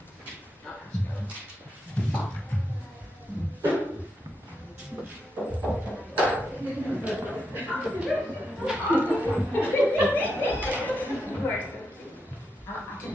course. I can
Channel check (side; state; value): both; normal; correlation 0.84